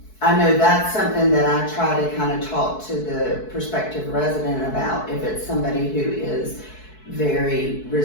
I know that's something that I try to kind of talk to the prospective resident about if it's somebody who is very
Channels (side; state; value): right; late; 4.6 ms